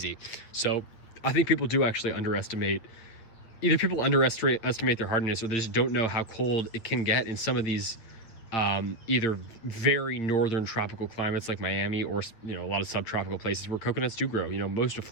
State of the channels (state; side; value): late; right; 8.7 ms